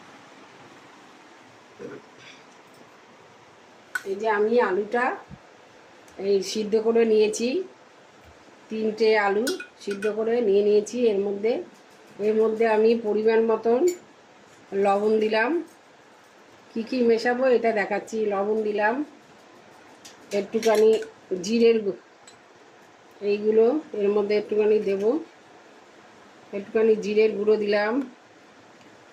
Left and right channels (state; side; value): identical; both; correlation 1.00